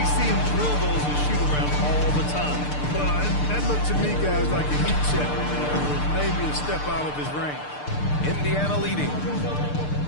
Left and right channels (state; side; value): late; right; 6.7 ms